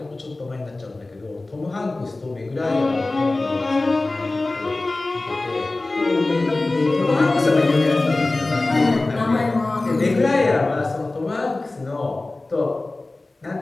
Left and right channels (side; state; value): right; quieter; 3.1 dB